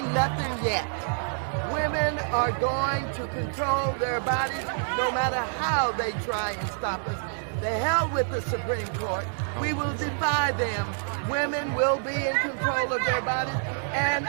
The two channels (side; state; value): left; silent; digital silence